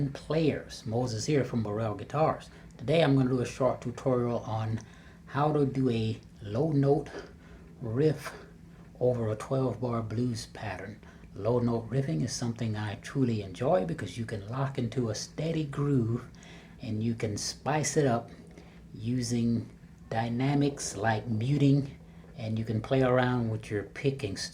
players. Moses here from Burrell Guitars. Today I'm going to do a short tutorial on how to do a low note riff over a 12-bar blues pattern. Low note riffing is something I truly enjoy because you can lock into a steady groove and you can spice it up using dynamics like muting, and you can play around with your picking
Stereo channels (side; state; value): both; identical; correlation 1.00